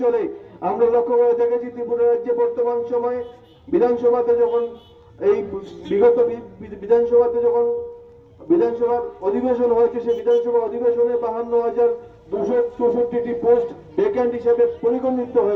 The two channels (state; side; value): identical; both; correlation 1.00